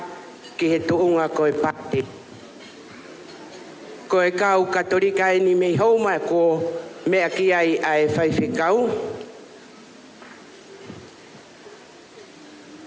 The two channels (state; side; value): identical; both; correlation 1.00